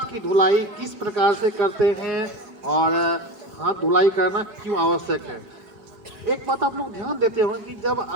की धुलाई किस प्रकार से करते हैं और हाथ धुलाई करना क्यों आवश्यक है। एक बात आप लोग ध्यान देते होंगे कि जब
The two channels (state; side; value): late; left; 5.2 ms